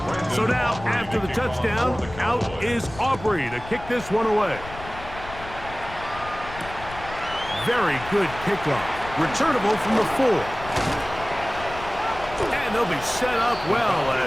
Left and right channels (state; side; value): noise; left; rumble, 14 dB below the sound